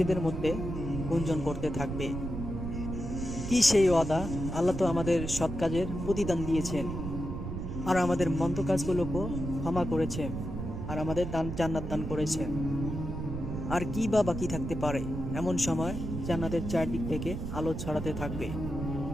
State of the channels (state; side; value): noise; right; rumble, 5 dB below the sound